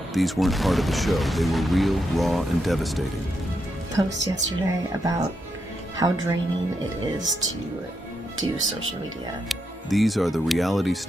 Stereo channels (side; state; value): both; normal; correlation 0.83